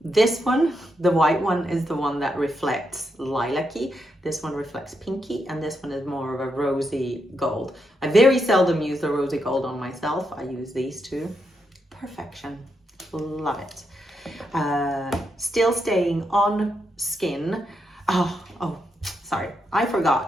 This one, the white one, is the one that reflects lilac-y. This one reflects pinky, and this one is more of a rosy gold. I very seldom use the rosy gold on myself. I use these two. Perfection. Love it. Still staying on skin. Oh, sorry, I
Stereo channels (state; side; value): normal; both; correlation 0.82